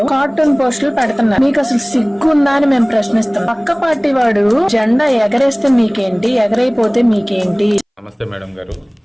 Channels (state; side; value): identical; both; correlation 1.00